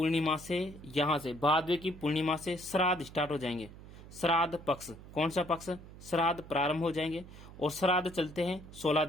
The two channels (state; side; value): noise; right; hum, 17 dB below the sound